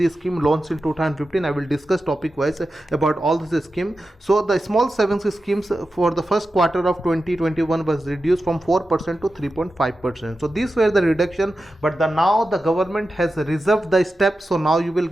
scheme, launched in 2015. I will discuss topic wise about all this scheme. So the small savings schemes for the first quarter of 2021 was reduced from 4% to 3.5%. So these were the reduction, but now the government has reserved the step, so now you will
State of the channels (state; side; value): normal; both; correlation 0.92